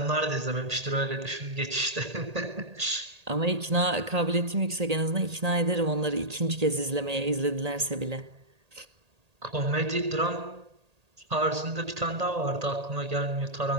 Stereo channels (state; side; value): late; left; 1.8 ms